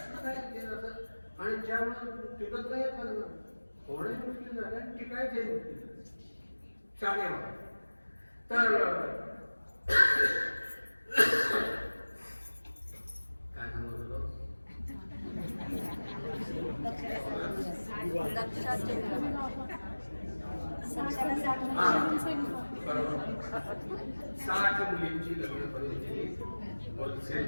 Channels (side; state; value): both; inverted; correlation -1.00